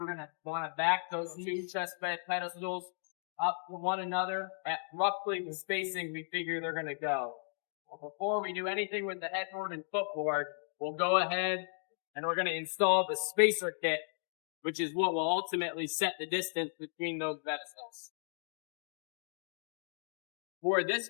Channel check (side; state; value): right; silent; digital silence